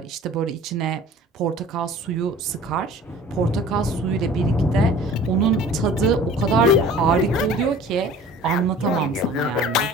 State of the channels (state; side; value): normal; both; correlation 0.46